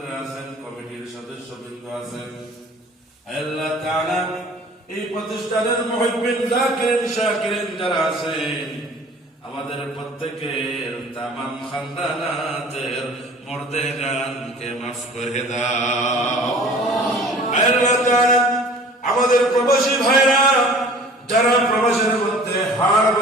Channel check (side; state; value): both; normal; correlation 0.48